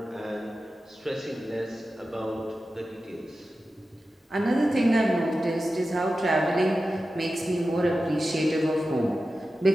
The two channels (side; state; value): both; normal; correlation 0.93